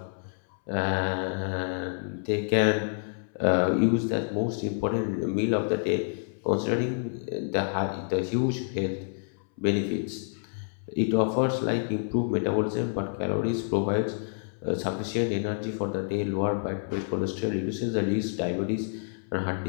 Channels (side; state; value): right; silent; 59 dB below the other